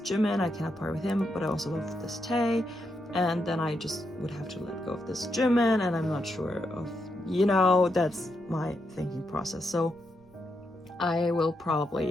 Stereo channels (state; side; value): noise; right; rumble, 28 dB below the sound